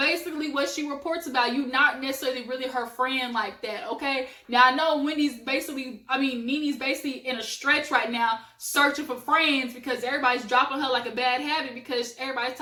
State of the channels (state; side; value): identical; both; correlation 1.00